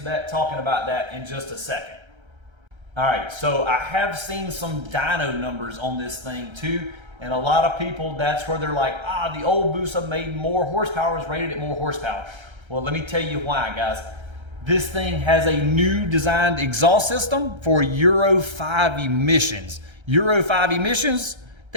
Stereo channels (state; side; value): late; left; 1.3 ms